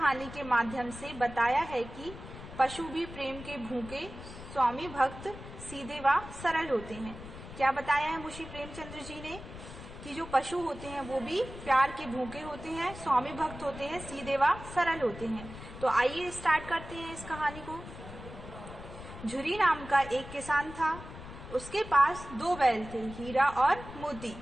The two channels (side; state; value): left; noise; rumble, 13 dB below the sound